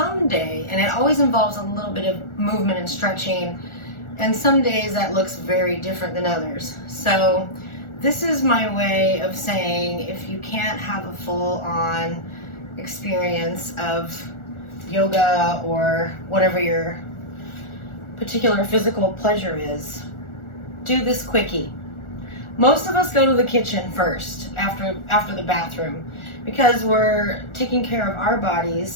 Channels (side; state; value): right; late; 1.4 ms